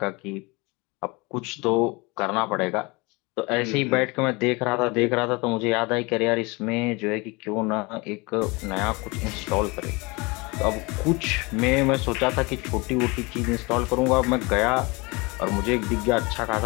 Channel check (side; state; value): right; quieter; 26.2 dB